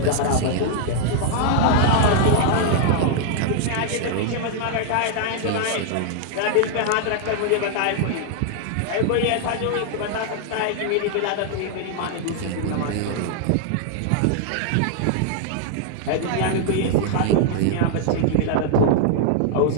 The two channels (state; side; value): different; both; correlation 0.00